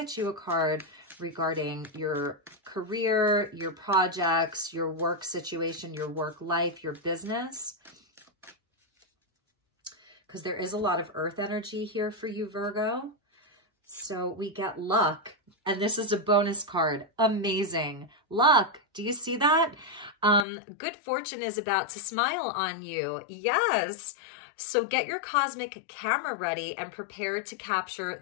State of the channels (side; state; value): right; drops out; at 20.5 s